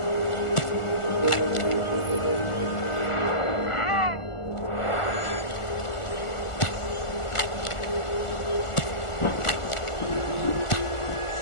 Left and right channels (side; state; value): right; late; 1.4 ms